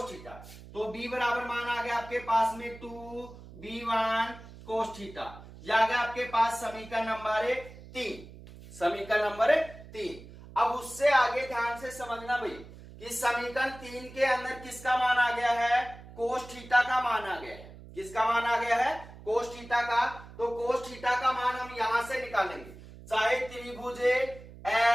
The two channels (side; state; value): right; noise; hum, 17 dB below the sound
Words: थीटा। तो B बराबर मान आ गया आपके पास में 2B1 कोस थीटा। यह आ गया आपके पास समीकरण नंबर 3, समीकरण नंबर 3। अब उससे आगे ध्यान से समझना भाई कि समीकरण 3 के अंदर किसका मान आ गया है कोस थीटा का मान आ गया है, किसका मान आ गया है कोस थीटा का। तो कोस थीटा का मान हम यहां से निकालेंगे, चाहे त्रिभुज